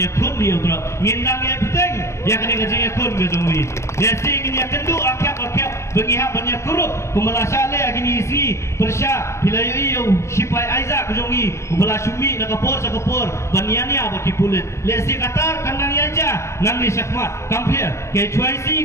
kun yu drop ngindang ya peteng ya kene ka jing kun ga jong wi ya sing ya kendu akap bengi ha banya kurup kumala sale agini isi persya bilayu yu sipai aiza ka jong wi kumala sumi na ka por sa ka por baniani aba ki pulit le si katar kandang ya ja nang ni syakmat kampir ke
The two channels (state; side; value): late; right; 0.13 ms